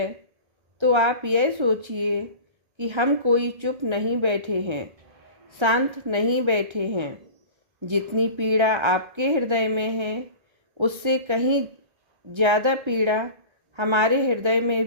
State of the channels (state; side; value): late; left; 1.3 ms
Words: तो आप यह सोचिए कि हम कोई चुप नहीं बैठे हैं, शांत नहीं बैठे हैं। जितनी पीड़ा आपके हृदय में है उससे कहीं ज़्यादा पीड़ा हमारे हृदय में